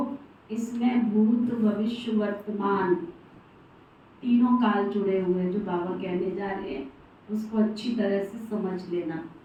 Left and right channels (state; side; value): identical; both; correlation 1.00